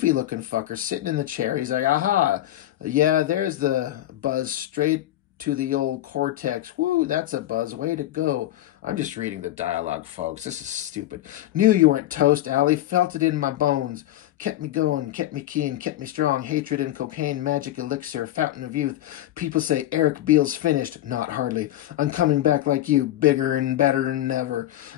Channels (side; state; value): right; quieter; 13.9 dB